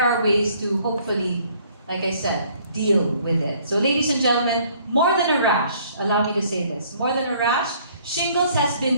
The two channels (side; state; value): both; inverted; correlation -0.60